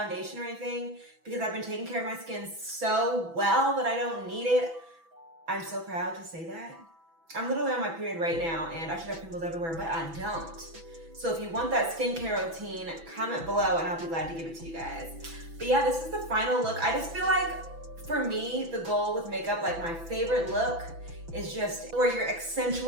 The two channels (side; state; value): left; late; 6.0 ms